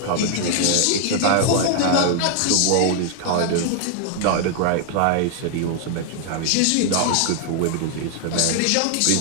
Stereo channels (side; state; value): both; different; correlation 0.00